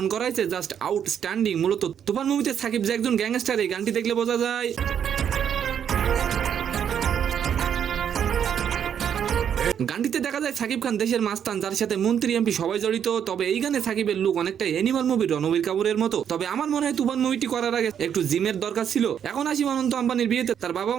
করা হয়েছে জাস্ট আউটস্ট্যান্ডিং। মূলত তুফান মুভিতে সাকিব যে একজন গ্যাংস্টার, এই গানটি দেখলে বোঝা যায়। গানটিতে দেখা যায় সাকিব খান দেশের মাস্তান, যার সাথে মন্ত্রী এমপি সবাই জড়িত। তবে এই গানে সাকিবের লুক অনেকটা অ্যানিমাল মুভির রণবীর কাপুরের মতো। তবে আমার মনে হয় তুফান মুভিটি করার আগে একটু জিমের দরকার ছিল। এখন আসি অনন্ত আম্বানির বিয়েতে তার বাবা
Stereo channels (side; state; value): left; quieter; 8.6 dB